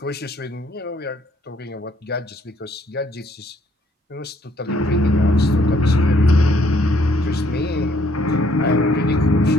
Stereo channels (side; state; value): both; normal; correlation 0.66